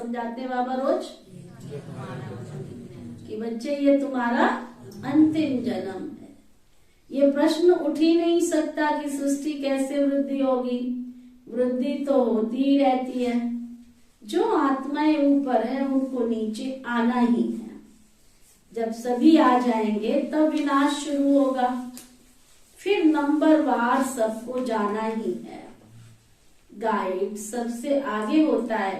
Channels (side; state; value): both; identical; correlation 1.00